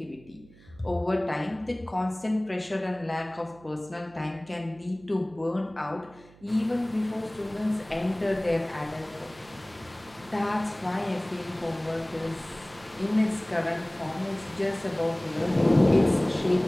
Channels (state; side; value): noise; right; hum, 24 dB below the sound